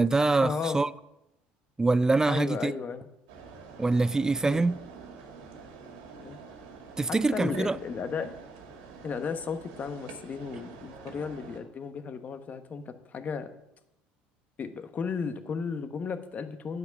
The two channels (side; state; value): both; normal; correlation 0.87